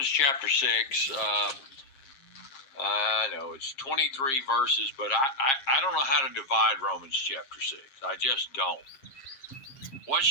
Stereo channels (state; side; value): late; right; 7.5 ms